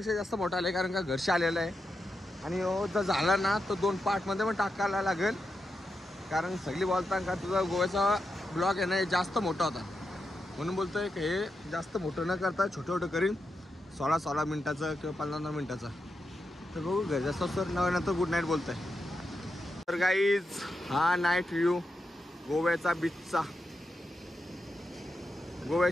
जास्त मोठा आलाय, कारण का घरशी आलेला आहे. आणि जर झाला ना तर 2 पार्टमध्ये पण टाकायला लागेल, कारण सगळी बोलतात का तुझा गोव्याचा ब्लॉग आहे ना जास्त मोठा होता, म्हणून बोलतोय की हे जास्त मोठं न करता छोटं छोटं करीन, 16 मिनिटाचं किंवा 15 मिनिटाचं. तर बघू घर जास्त सर नंतर गुड नाईट बोलतोय. तर गाईज हा नाईट व्ह्यू गोव्याचा बीचचा.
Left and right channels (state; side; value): normal; both; correlation 0.87